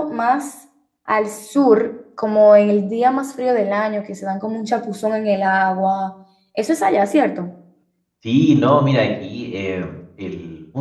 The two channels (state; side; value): identical; both; correlation 1.00